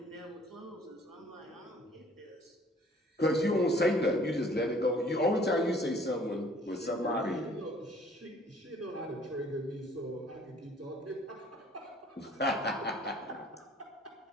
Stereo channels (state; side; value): normal; both; correlation 0.56